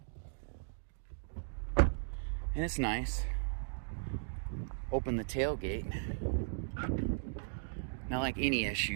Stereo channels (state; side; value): silent; left; digital silence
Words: And it's nice. Open the tailgate. Now, like any